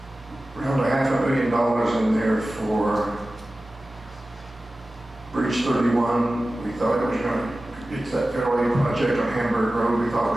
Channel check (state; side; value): normal; both; correlation 0.95